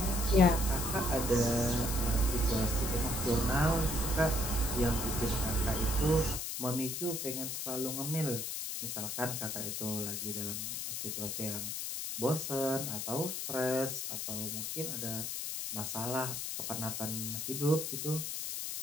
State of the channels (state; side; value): noise; left; hiss, 3 dB below the sound